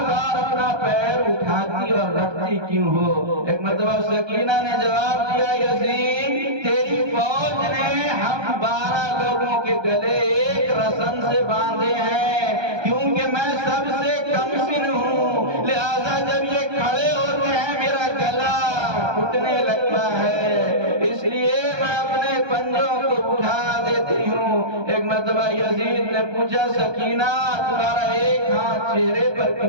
بار اپنا پیر اٹھاتی اور رکھتی کیوں ہو؟ ایک مرتبہ سکینہ نے جواب دیا یزید تیری فوج نے ہم 12 لوگوں کے گلے ایک رسن سے باندھے ہیں، کیونکہ میں سب سے کم سن ہوں، لہذا جب یہ کھڑے ہوتے ہیں میرا گلا گھٹنے لگتا ہے، اس لیے میں اپنے پنجوں کو اٹھا دیتی ہوں۔ ایک مرتبہ یزید نے پوچھا سکینہ تمہارا ایک ہاتھ چہرے پر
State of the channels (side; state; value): left; late; 1.2 ms